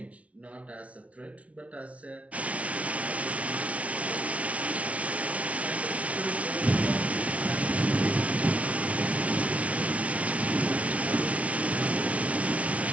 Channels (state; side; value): late; left; 0.065 ms